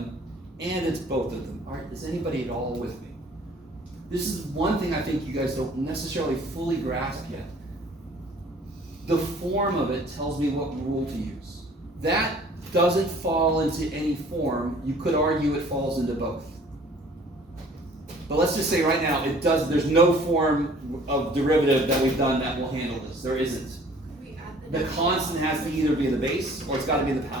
and it's both of them. All right, is anybody at all with me? This is one thing I think you guys don't necessarily fully grasp yet. The form of it tells me what rule to use. That doesn't fall into any form. You could argue it falls into both. But let's just say right now, it does. There's no form of derivative that we've done that will handle this. There isn't. Could we add The constant has to either be in the base or it's got to be in the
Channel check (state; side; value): normal; both; correlation 0.53